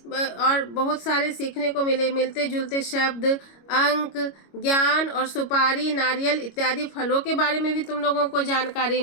और बहुत सारे सीखने को मिले, मिलते जुलते शब्द, अंक, ज्ञान और सुपारी, नारियल इत्यादि फलों के बारे में भी तुम लोगों को जानकारी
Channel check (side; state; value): right; late; 25 ms